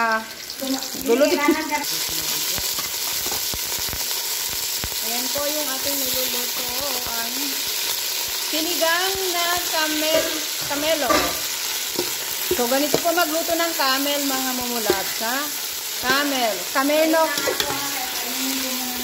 Gulo dito. Ayan po yung ating niluluto. Ang sinigang na camelo. So, ganito po magluto ng camel, mga mumulat. Ha? Camel. Kamenok.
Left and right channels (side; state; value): both; identical; correlation 1.00